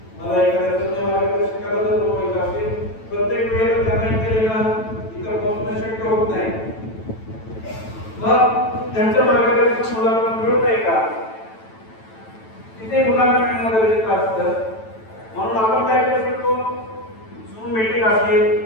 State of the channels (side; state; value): right; late; 9.1 ms